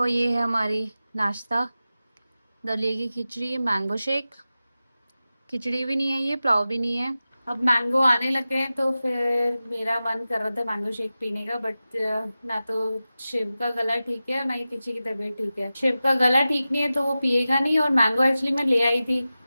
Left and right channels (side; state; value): both; inverted; correlation -0.94